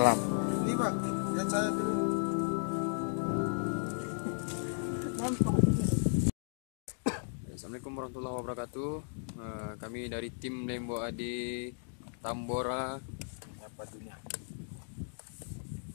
Ini Pak, lihat saya dulu. Assalamualaikum warahmatullahi wabarakatuh. Kami dari tim Lembo Adi Tambora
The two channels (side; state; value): right; silent; digital silence